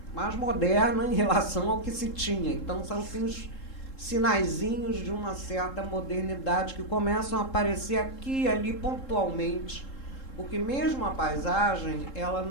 moderna em relação ao que se tinha. Então, são assim, os sinaizinhos de uma certa modernidade que começam a aparecer aqui e ali pontualmente, porque mesmo a paisagem ela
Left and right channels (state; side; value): late; right; 3.7 ms